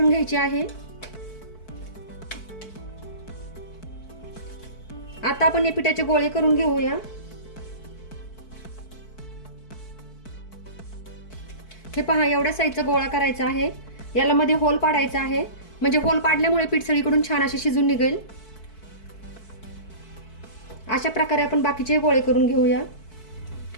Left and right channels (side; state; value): right; late; 4.6 ms